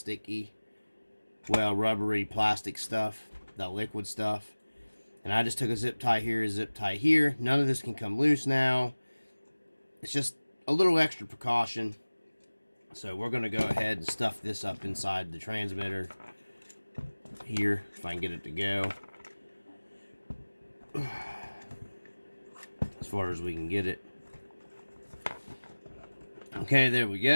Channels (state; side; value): inverted; both; correlation -1.00